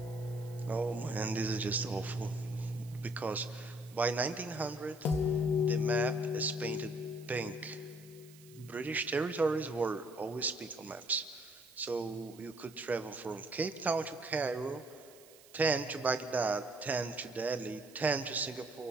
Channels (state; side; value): noise; right; hiss, 23 dB below the sound